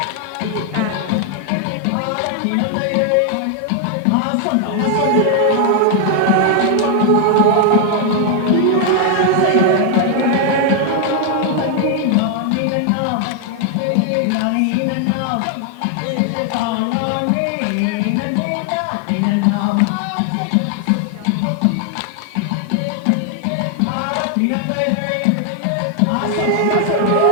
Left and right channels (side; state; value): both; different; correlation 0.00